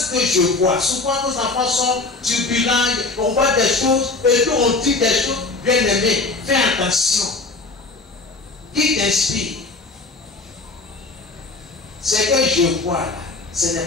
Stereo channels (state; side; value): quieter; right; 3.5 dB